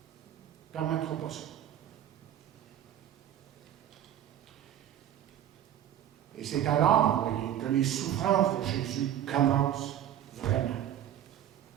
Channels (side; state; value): left; quieter; 11.1 dB